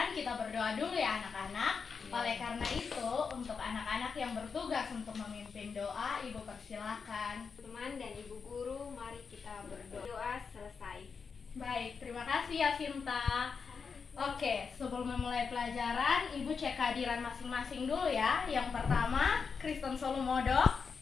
kita berdoa dulu ya anak-anak. Oleh karena itu, untuk anak-anak yang bertugas untuk memimpin doa, Ibu persilahkan. Teman dan Ibu Guru, mari kita berdoa. Doa selesai. Baik, terima kasih ya Sinta. Oke, sebelum memulai pelajaran, Ibu cek kehadiran masing-masing dulu ya. Yang pertama, Kristen Solomodo,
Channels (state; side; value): quieter; right; 5.6 dB